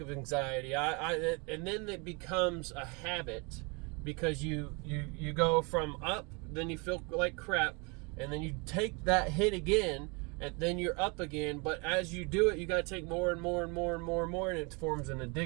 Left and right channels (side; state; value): left; quieter; 30.6 dB